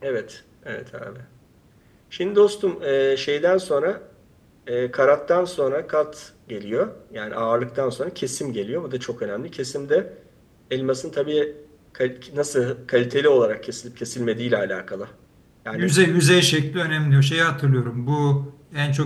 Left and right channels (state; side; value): identical; both; correlation 1.00